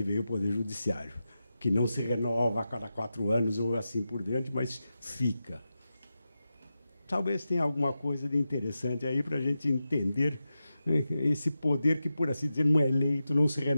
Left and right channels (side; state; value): both; inverted; correlation -0.91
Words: veio o Poder Judiciário, que não se renova a cada 4 anos ou assim por diante, mas fica. Talvez tenha alguma coisa de interessante aí para a gente entender esse poder que, por assim dizer, não é eleito, não se